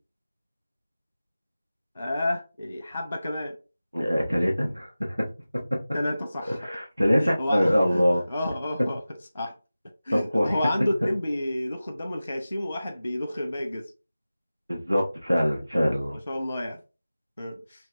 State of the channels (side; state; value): both; inverted; correlation -0.96